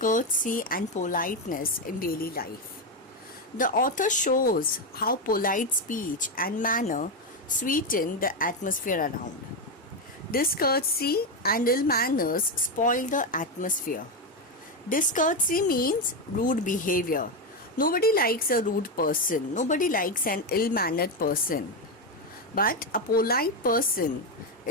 courtesy and politeness in daily life. The author shows how polite speech and manner sweeten the atmosphere around. Discourtesy and ill manners spoil the atmosphere. Discourtesy means rude behavior. Nobody likes a rude person. Nobody likes an ill-mannered person. But a polite person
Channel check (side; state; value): both; normal; correlation 0.09